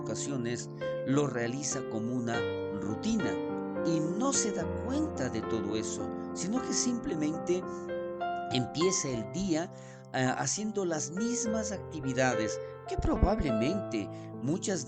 lo realiza como una rutina y no se da cuenta de todo eso, sino que simplemente empieza el día haciendo las mismas actividades que probablemente muchas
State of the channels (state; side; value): identical; both; correlation 1.00